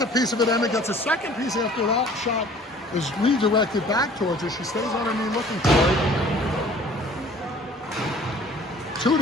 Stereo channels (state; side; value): normal; both; correlation 0.51